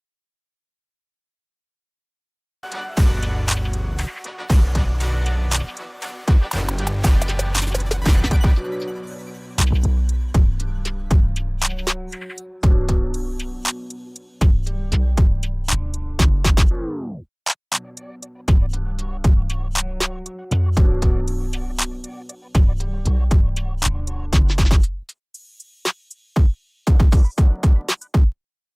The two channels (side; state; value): both; identical; correlation 1.00